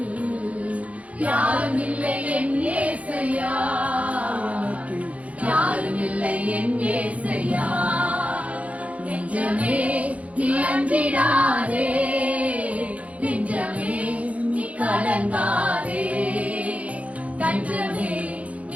யாரும் இல்லை என் இயேசையா, யாரும் இல்லை என் இயேசையா. நெஞ்சமே நீ அஞ்சிடாதே, நெஞ்சமே நீ கலங்காதே, தஞ்சமே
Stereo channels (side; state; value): left; late; 0.066 ms